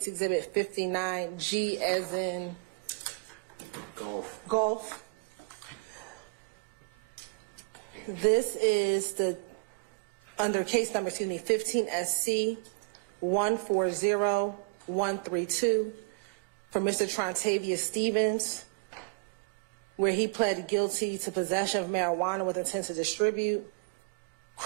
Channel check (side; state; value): left; quieter; 32.3 dB